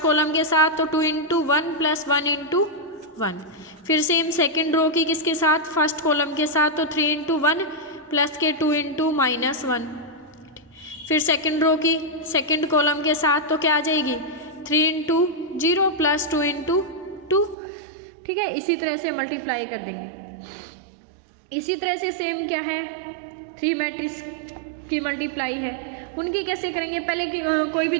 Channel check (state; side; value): drops out; left; at 17.6 s